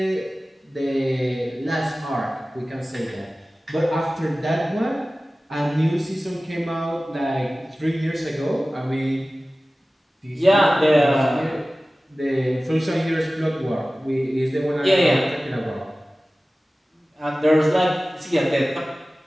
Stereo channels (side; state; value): both; normal; correlation 0.97